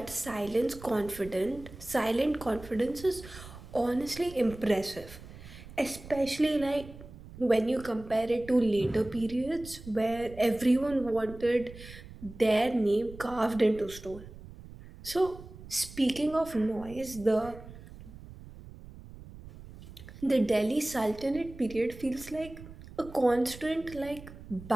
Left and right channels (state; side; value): noise; right; rumble, 16 dB below the sound